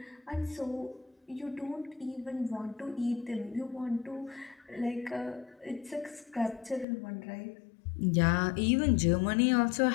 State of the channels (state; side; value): drops out; right; at 6.9 s